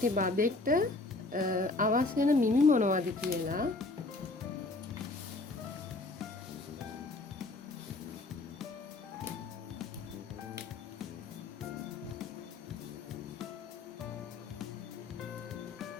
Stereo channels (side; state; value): right; quieter; 3.3 dB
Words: බබෙක්ට අවශ්‍ය වෙන මිමි මොනවද කියලා.